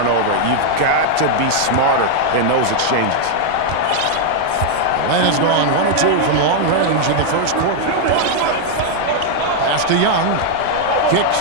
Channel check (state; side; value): different; both; correlation 0.00